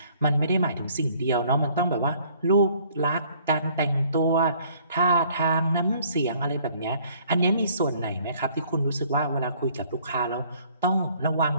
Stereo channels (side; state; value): both; inverted; correlation -0.59